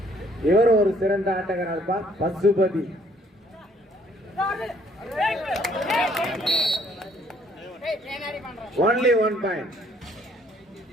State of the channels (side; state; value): both; normal; correlation 0.63